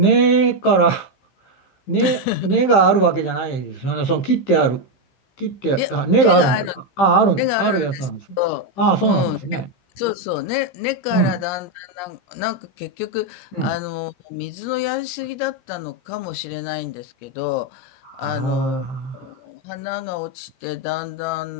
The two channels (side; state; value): right; late; 15 ms